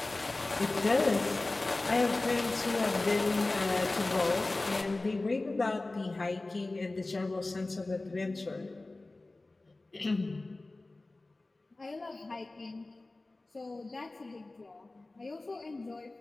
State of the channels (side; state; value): right; quieter; 3.1 dB